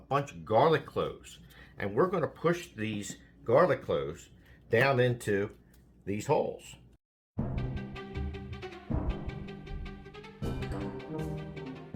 of garlic cloves and we're going to push these garlic cloves down into these holes.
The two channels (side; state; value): both; identical; correlation 1.00